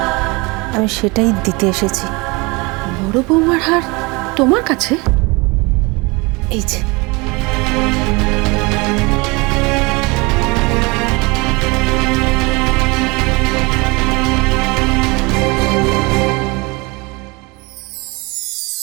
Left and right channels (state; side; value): quieter; left; 26.1 dB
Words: আমি সেটাই দিতে এসেছি। বড় বৌমার হার তোমার কাছে? এই যে।